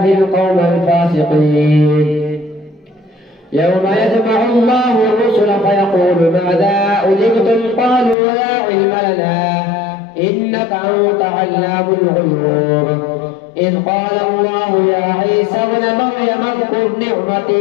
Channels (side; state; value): right; drops out; at 8.2 s